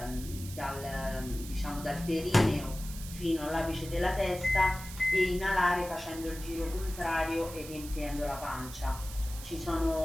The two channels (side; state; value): right; noise; hiss, 13 dB below the sound